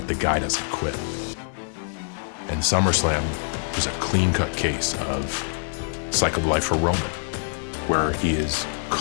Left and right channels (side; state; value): right; silent; digital silence